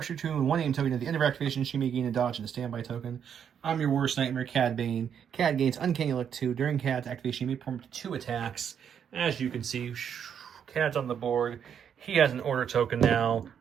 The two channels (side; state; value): left; quieter; 8.2 dB